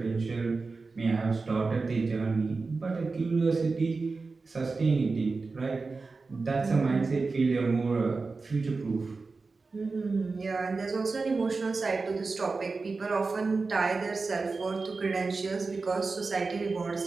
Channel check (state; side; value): quieter; left; 4.1 dB